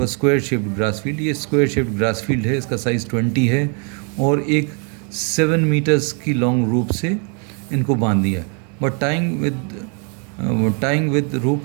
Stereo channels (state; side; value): quieter; left; 38.3 dB